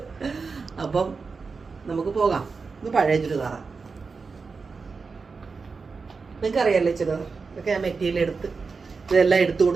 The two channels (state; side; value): quieter; left; 4.7 dB